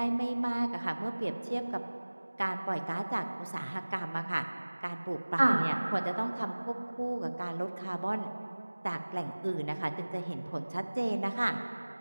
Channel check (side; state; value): both; inverted; correlation -1.00